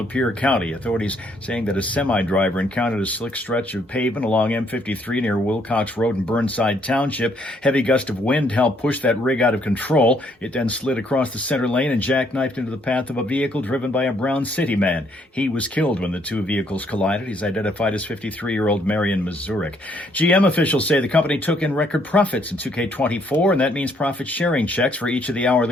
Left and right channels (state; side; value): normal; both; correlation 0.69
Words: County. Authorities saying that a semi-driver encountered a slick stretch of pavement along M53 near Wilcox Road in Burnside Township. Heavy gust of wind helped push that rig out of control. It then slid across the center lane and jackknifed into the path of a vehicle driven by a Brown City man. He was killed when the 2 vehicles collided. He's identified as 53-year-old Marion Mazurek. GM officials say the company took in record profits in 2K24, and that means profit-sharing checks for each of the